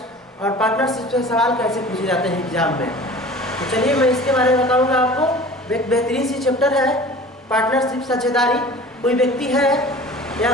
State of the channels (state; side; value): normal; both; correlation 0.42